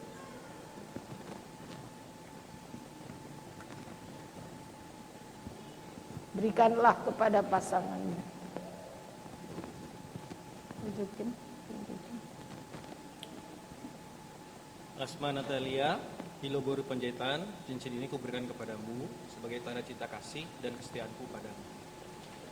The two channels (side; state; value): both; identical; correlation 1.00